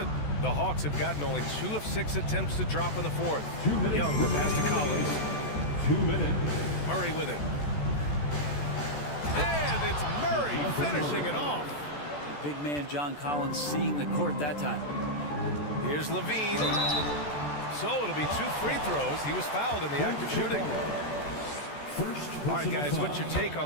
The Hawks have gotten only 2 of 6 attempts to drop in the 4th. 2 minutes. Young, the pass to Collins. 2 minutes. Murray with it. And it's Murray finishing it off. The big man John Collins seeing the court that time. Here's Levine. So it'll be 2 free throws. He was fouled in the act of shooting. All right, guys, what's your take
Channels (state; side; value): late; right; 14 ms